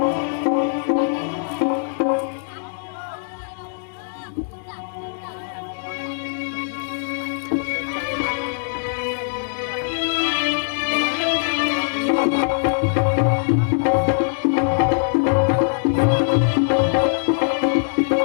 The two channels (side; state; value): right; silent; digital silence